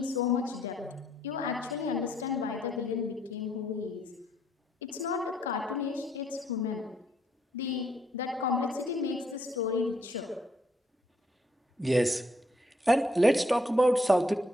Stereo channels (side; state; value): both; normal; correlation 0.70